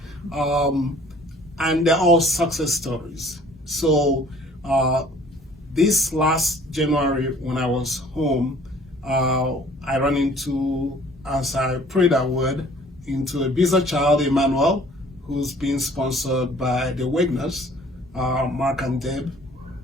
and they're all success stories. So this last January when I was home, I ran into, as I prayed I would, into a BIZAA child, Emmanuel, who's being sponsored by the Wagners, Mark and Deb.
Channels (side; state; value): both; normal; correlation 0.54